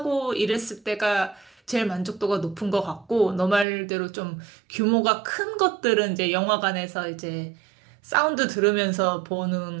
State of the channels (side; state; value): left; drops out; at 3.7 s